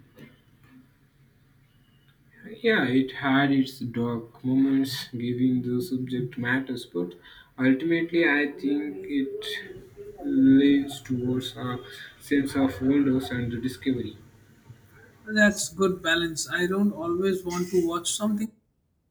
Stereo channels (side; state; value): both; identical; correlation 1.00